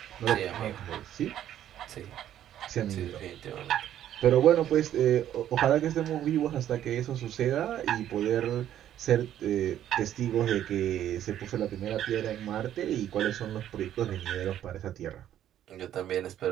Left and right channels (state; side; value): quieter; left; 11.3 dB